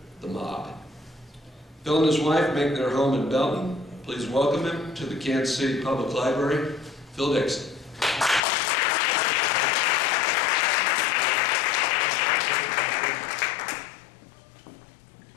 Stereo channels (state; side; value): drops out; right; at 8.4 s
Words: the mob. Phil and his wife make their home in Belton. Please welcome him to the Kansas City Public Library, Phil Dixon.